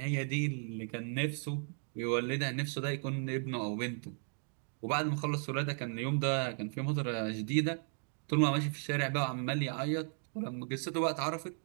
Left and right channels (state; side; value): silent; left; 54 dB below the other